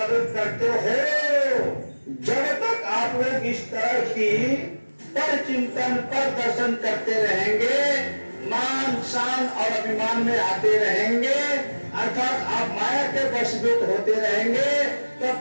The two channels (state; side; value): inverted; both; correlation -1.00